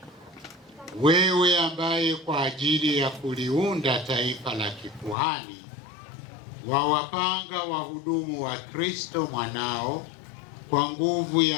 Wewe ambaye kwa ajili ya kuliunda taifa la kikuhani wawapanga wahudumu wa Kristo mwanao kwa nguvu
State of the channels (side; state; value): right; drops out; at 5.2 s